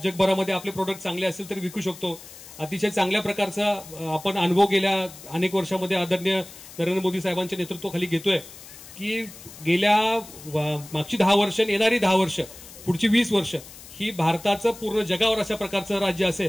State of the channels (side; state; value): left; noise; hiss, 17 dB below the sound